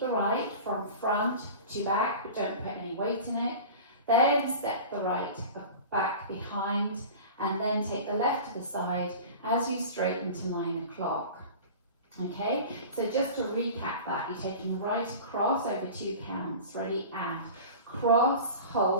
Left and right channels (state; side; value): inverted; both; correlation -0.36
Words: the right from front to back, but don't put any weight in it. Then step the right back behind, and then take the left to the side as you straighten to 9 o'clock. Okay, so just to recap that, you're taking the right across over 2 counts. Ready, and cross,